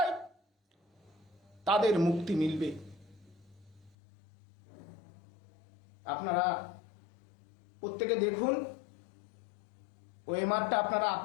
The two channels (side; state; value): right; drops out; at 4.0 s